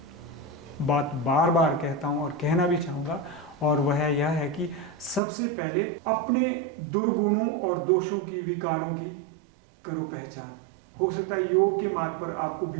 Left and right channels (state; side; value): drops out; left; at 5.2 s